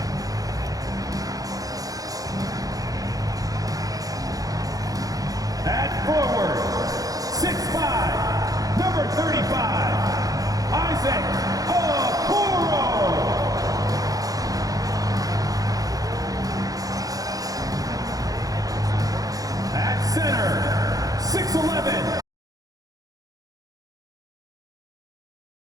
At forward, 6'5", number 35, Isaac Okoro. At center, 6'11".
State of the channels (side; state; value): left; late; 0.17 ms